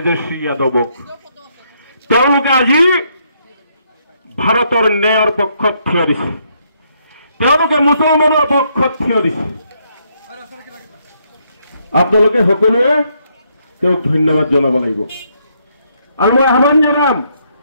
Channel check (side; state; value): both; inverted; correlation -0.73